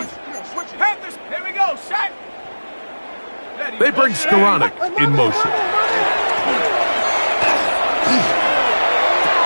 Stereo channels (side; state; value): both; inverted; correlation -1.00